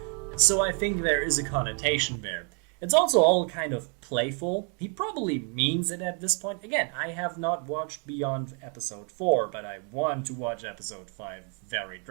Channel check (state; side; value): quieter; left; 38.5 dB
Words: So I think there is a connotation there. It's also all kind of playful. He probably means it at this point. Again, I have not watched beyond episode 4, but I want to watch episode 5 very